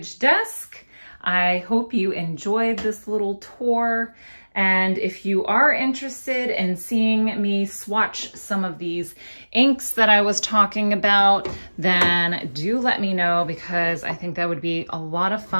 desk. I hope you enjoyed this little tour. And if you are interested in seeing me swatch some of these inks that I was talking about, then do let me know, because I think that would be a lot of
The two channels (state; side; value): inverted; both; correlation -1.00